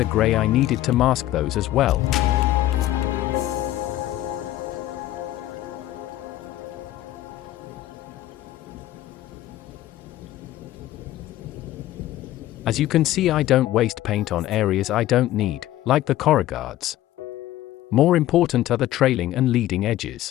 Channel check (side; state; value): right; quieter; 14.5 dB